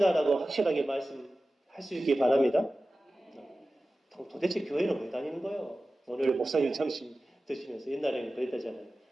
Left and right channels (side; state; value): both; normal; correlation 0.95